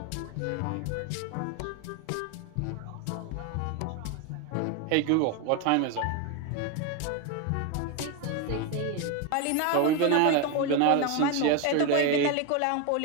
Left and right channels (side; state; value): both; different; correlation 0.02